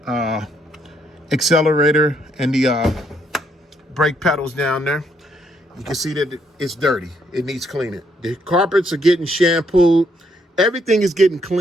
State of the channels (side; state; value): both; normal; correlation 0.72